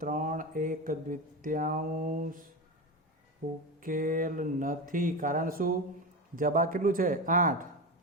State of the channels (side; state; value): both; normal; correlation 0.21